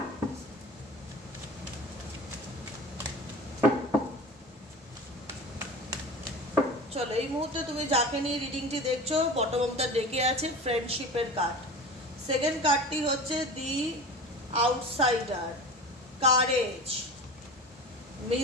চলো, এই মুহূর্তে তুমি যাকে নিয়ে রিডিংটি দেখছো, বটম অফ দ্য ডেকে আছে ফ্রেন্ডশিপের কার্ড। সেকেন্ড কার্ডটি হচ্ছে দি আউটসাইডার, কারেজ,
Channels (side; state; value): both; normal; correlation 0.34